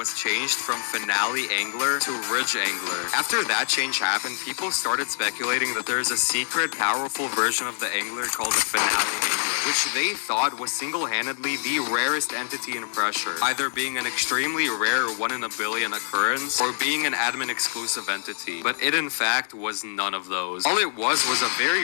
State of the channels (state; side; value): silent; right; digital silence